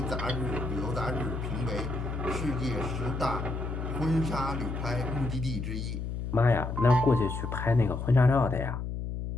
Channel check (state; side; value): noise; left; hum, 4 dB below the sound